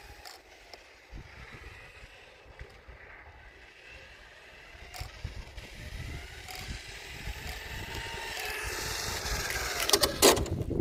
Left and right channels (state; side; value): identical; both; correlation 1.00